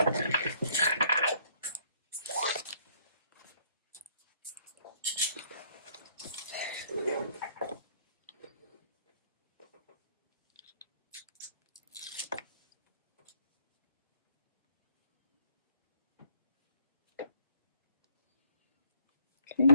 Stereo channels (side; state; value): both; inverted; correlation -0.65